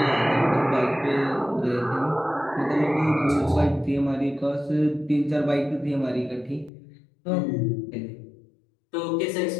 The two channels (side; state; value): right; drops out; at 6.7 s